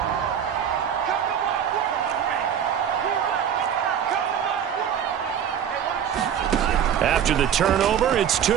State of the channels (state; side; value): quieter; left; 8.8 dB